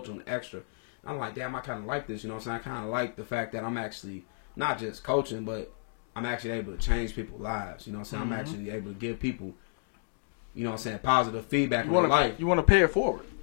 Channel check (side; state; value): right; silent; digital silence